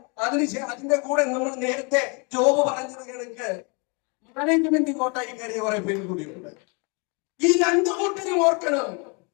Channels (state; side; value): quieter; right; 32.7 dB